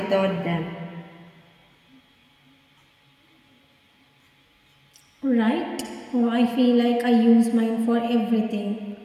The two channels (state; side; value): identical; both; correlation 1.00